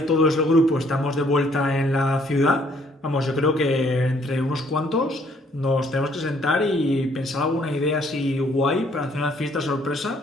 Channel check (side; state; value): both; normal; correlation 0.64